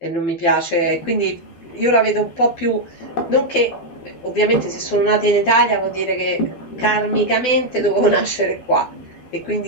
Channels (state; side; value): late; right; 12 ms